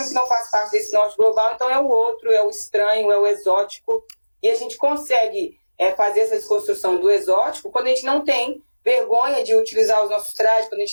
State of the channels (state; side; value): inverted; both; correlation -1.00